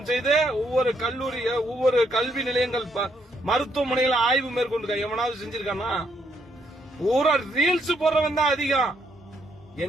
செய்து ஒவ்வொரு கல்லூரி, ஒவ்வொரு கல்வி நிலையங்கள், மருத்துவமனைகளை ஆய்வு மேற்கொண்டு எவனாவது செஞ்சிருக்கானா? பூரா ரீல்ஸ் போடுறவன் தான் அதிகம்.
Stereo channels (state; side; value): normal; both; correlation 0.73